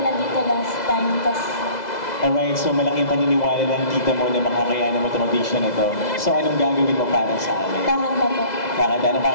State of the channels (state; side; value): late; right; 2.0 ms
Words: dito last time. Alright, so malaking paniniwala ng tita mo na makakayanan mo itong audition na ito. So, anong gagawin mo para sa amin? Kakanta po. Kakanta? Anong